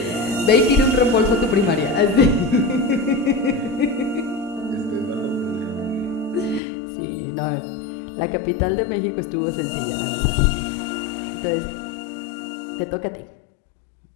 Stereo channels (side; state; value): right; drops out; at 6.6 s